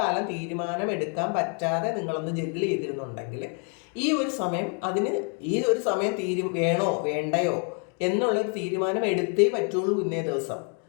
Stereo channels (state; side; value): quieter; right; 39.9 dB